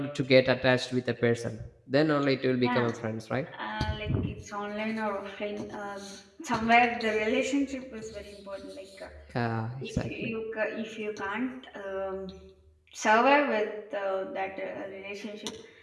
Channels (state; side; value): identical; both; correlation 1.00